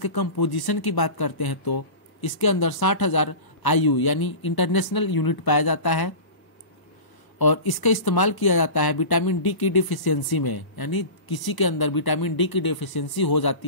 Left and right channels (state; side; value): late; right; 1.1 ms